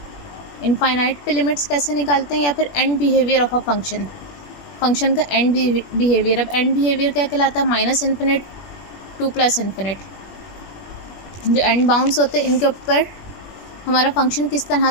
इनफाइनाइट पे लिमिट्स कैसे निकालते हैं, या फिर and behaviour of a function, function का एंड बिहेवियर। अब एंड बिहेवियर क्या कहलाता है? Minus infinite to plus infinite. जो एंड बाउंड्स होते हैं इनके ऊपर हमारा फंक्शन किस तरह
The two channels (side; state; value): right; late; 21 ms